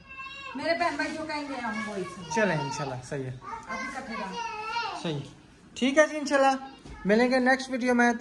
मेरे बहन भाई जो कहेंगे हम वही चले इंशाल्लाह सही है, अभी कटेगा सही ठीक है जी। इंशाल्लाह मिलेंगे नेक्स्ट वीडियो में,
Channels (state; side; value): identical; both; correlation 1.00